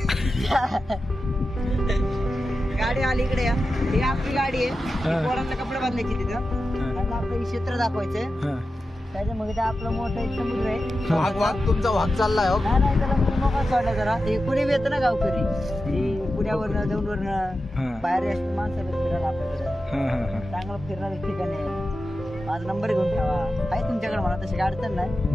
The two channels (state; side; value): normal; both; correlation 0.92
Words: गाडी आली इकडे या. ही आपली गाडी आहे. पोरांना कपडे बांधायची तिथं. आणि आपलं हे क्षेत्र दाखवायचं. त्याच्यामध्ये ते आपलं मोठं एक समुद्र आहे. वाघ तुमचा वाघ चाललाय. नाही त्याला मोकळा सोडला जरा. हे पुणे बी येतं ना गावकरी. हे पुण्यावरनं दौंडवरनं बाहेर असतं माणसाला फिरायला आपल्याकडे. चांगलं फिरणारे ठिकाण आहे. माझा नंबर घेऊन ठेवा. आहे तुमच्याकडे म्हणा तशी अडचण नाही.